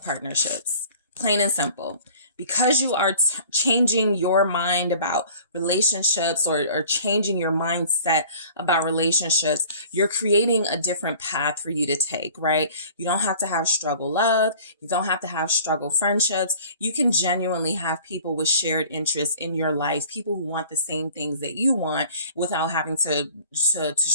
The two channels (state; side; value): inverted; both; correlation -0.47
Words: partnerships, plain and simple. because you are changing your mind about relationships, or changing your mindset about relationships, you're creating a different path for you to take, right? You don't have to have struggle love. You don't have to have struggle friendships. You can genuinely have people with shared interests in your life, people who want the same things that you want without having to